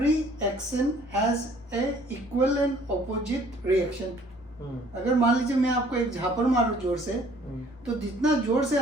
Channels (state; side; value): normal; both; correlation 0.57